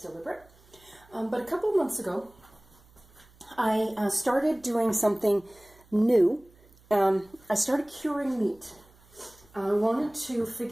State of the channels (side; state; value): right; noise; hum, 28 dB below the sound